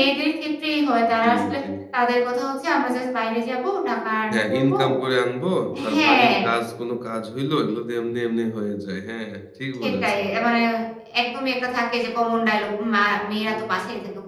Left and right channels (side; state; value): both; identical; correlation 1.00